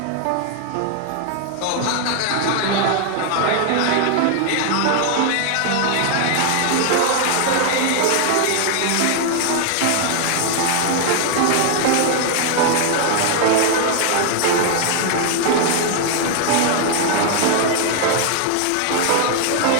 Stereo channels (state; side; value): different; both; correlation 0.00